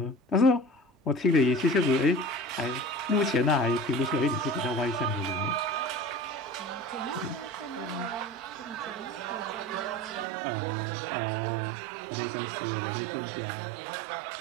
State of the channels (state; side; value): drops out; left; at 10.2 s